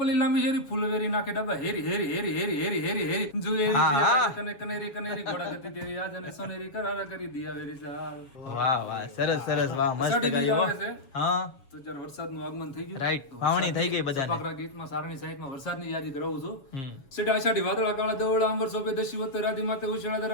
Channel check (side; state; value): right; late; 7.2 ms